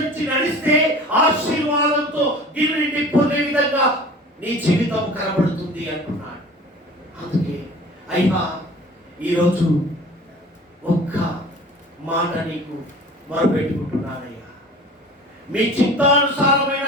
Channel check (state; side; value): normal; both; correlation 0.42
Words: నడిస్తే ఆశీర్వాదంతో గిన్నె నిండిపోయే విధంగా నీ జీవితం కనబడుతుంది అంటున్నాడు. అందుకే అయ్యా ఈరోజు ఒక్క మాట నీకు మొరపెట్టుకుంటున్నానయ్యా, మీ చిత్తానుసారమైన